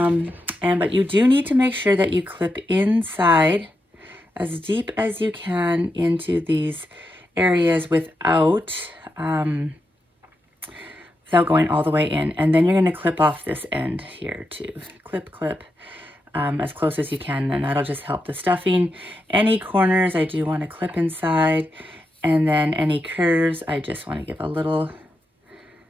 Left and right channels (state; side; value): normal; both; correlation 0.86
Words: you do need to make sure that you clip inside as deep as you can into these areas without going all the way in. And then you're going to clip off this end here too. Clip, clip. As close as you can, and that'll just help the stuffing. Any corners I do want to clip inside. And then any curves, I just want to give a little,